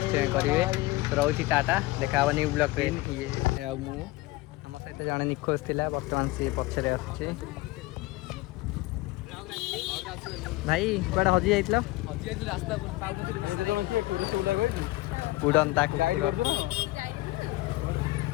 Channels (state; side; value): quieter; right; 19.8 dB